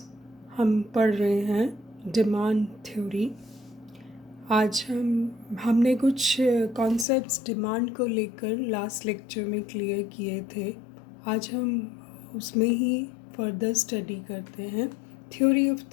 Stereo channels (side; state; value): right; drops out; at 7.1 s